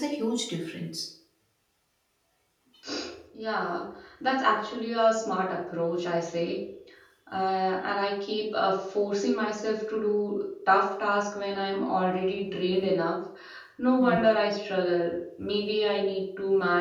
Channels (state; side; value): identical; both; correlation 1.00